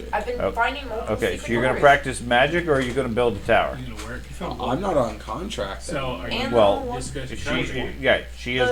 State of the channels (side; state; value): both; identical; correlation 1.00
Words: I've been Okay. finding multiple Okay, so secret you're gonna doors. practice magic, or are you gonna build a tower? You gonna work? I'm not on contract. So are you And Well, the one- discussing She is